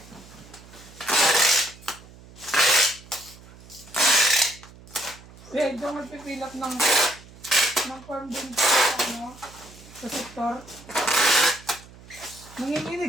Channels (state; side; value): noise; right; hum, 21 dB below the sound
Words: Kaya ito magpipilap ng form din sa ano, sa sektor.